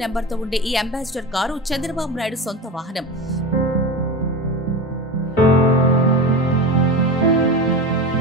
నెంబర్తో ఉండే ఈ అంబాసిడర్ కారు చంద్రబాబు నాయుడు సొంత వాహనం.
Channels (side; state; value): both; normal; correlation 0.25